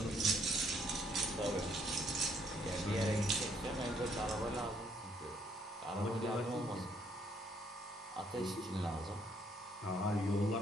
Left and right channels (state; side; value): normal; both; correlation 0.69